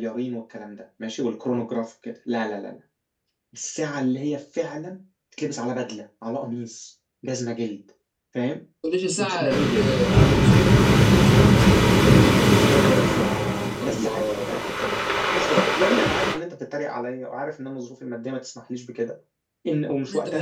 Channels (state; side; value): identical; both; correlation 1.00